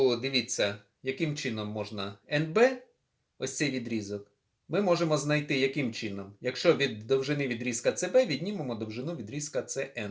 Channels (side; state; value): both; identical; correlation 1.00